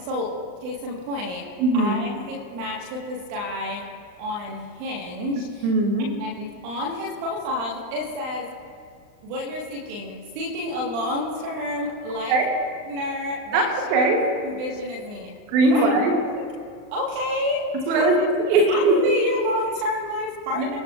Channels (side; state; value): left; late; 39 ms